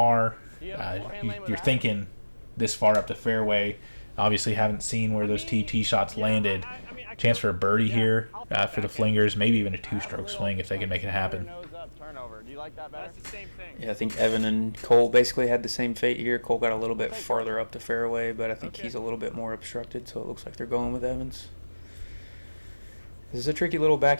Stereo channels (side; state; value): both; inverted; correlation -1.00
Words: You're thinking this far up the fairway. Obviously haven't seen where those tee shots landed. Chance for a birdie here for the Flingers. Maybe even a two-stroke swing if they can make it happen. Nose up, turnover. Do you like that better? that's the same thing. Yeah, I think Evan and Cole basically had the same fate here. Cole got a little bit farther up the fairway, but I think he's a little bit more obstructed, so it looks like they're going with Evans. This is a tricky little